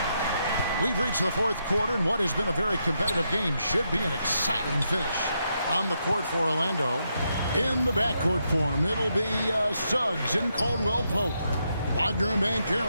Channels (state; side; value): inverted; both; correlation -0.81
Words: We've reached the fourth quarter, and what has been a very competitive game should be an exciting finish. On the court for Orlando. In the backcourt form, it'll be Suggs and Caldwell Pope. Wagner and